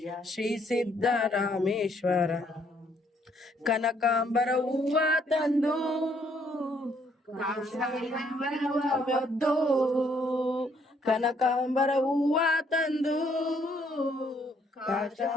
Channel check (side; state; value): both; normal; correlation 0.68